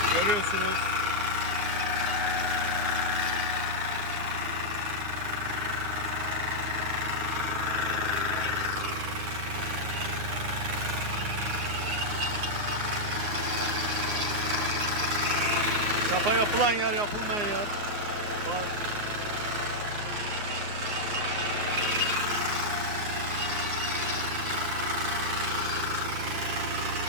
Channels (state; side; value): late; left; 9.9 ms